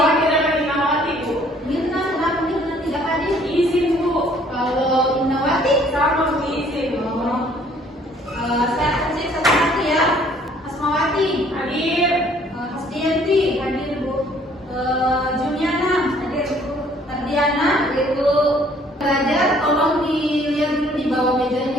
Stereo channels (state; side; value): normal; both; correlation 0.59